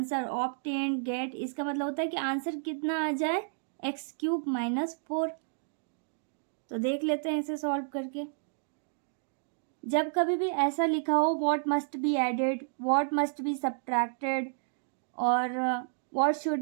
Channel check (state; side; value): silent; left; digital silence